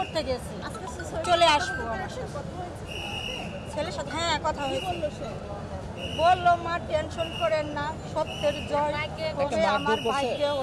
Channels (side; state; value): both; identical; correlation 1.00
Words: গেছি, চলে আসবো। ছেলের সাথে হ্যাঁ কথা হয়েছে, বললো মা টেনশন করেন না, সত্যের জয় হবে, আমার ভাইকে